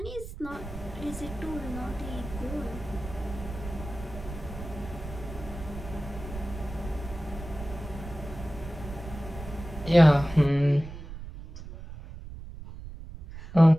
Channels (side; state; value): right; noise; rumble, 11 dB below the sound